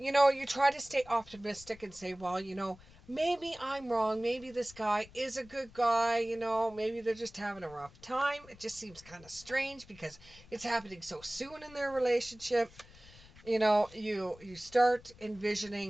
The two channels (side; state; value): left; noise; rumble, 22 dB below the sound